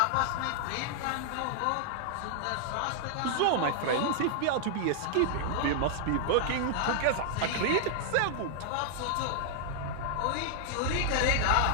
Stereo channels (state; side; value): different; both; correlation -0.01